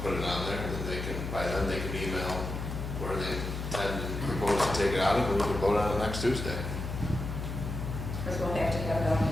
it on there, and then they can, by then they can email where they intend and propose to take it out of, and we can vote on it next Tuesday. Because we'll have to have it on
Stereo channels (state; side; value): noise; left; hum, 5 dB below the sound